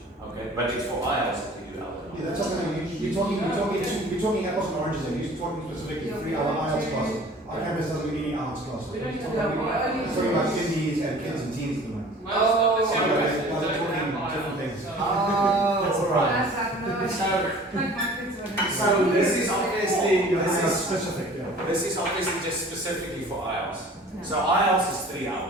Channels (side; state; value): both; normal; correlation 0.47